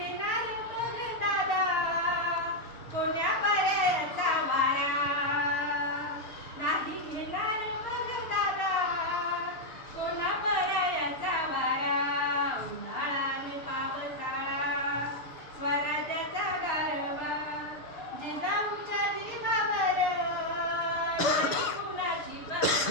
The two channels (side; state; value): right; late; 6.3 ms